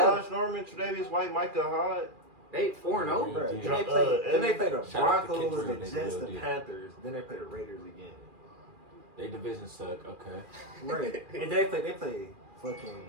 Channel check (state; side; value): late; left; 2.4 ms